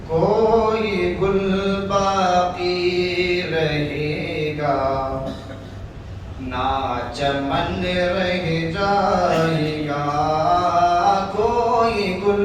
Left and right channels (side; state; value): both; identical; correlation 1.00